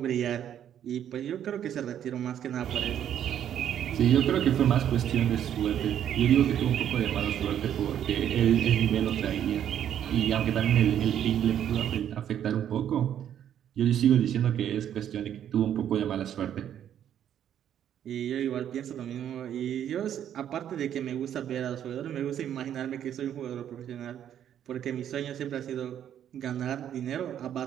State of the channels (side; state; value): left; quieter; 10.0 dB